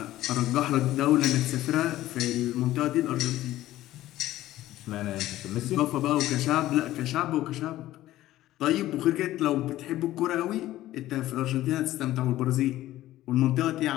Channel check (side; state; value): right; quieter; 14.9 dB